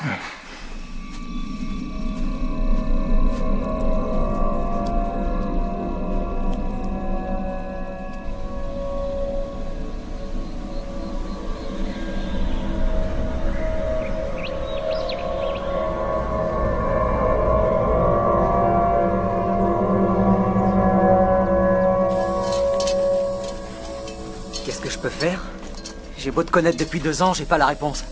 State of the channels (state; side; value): identical; both; correlation 1.00